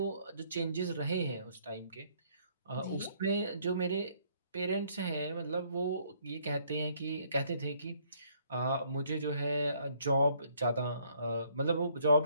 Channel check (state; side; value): inverted; both; correlation -0.65